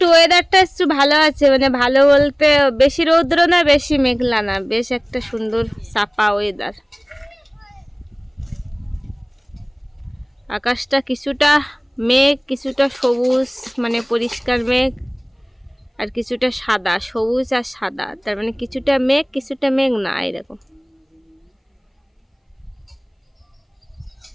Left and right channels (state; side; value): identical; both; correlation 1.00